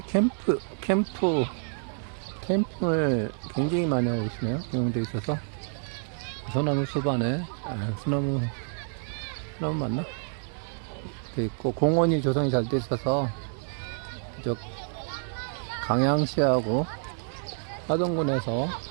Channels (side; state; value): left; silent; 58 dB below the other